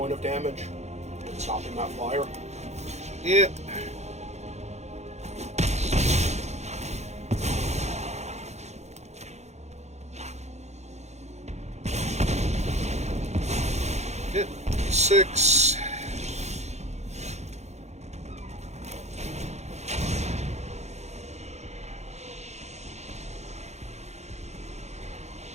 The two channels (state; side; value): late; left; 0.32 ms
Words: of damage and stopping that flyer. Yeah. Yep. 6.